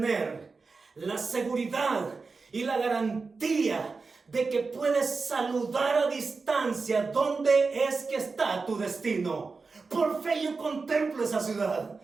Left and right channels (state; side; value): quieter; left; 4.4 dB